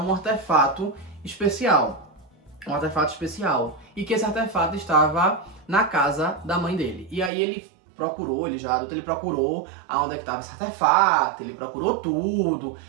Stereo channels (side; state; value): left; drops out; at 7.3 s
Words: artefato especial. Um artefato especial. E que esse artefato estava na casa da mãe dele. E aí ele procurou, ele já adulto, ele procurou aonde é que estava esse artefato, ele procurou tudo,